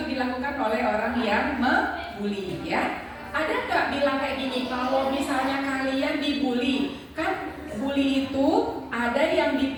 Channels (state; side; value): identical; both; correlation 1.00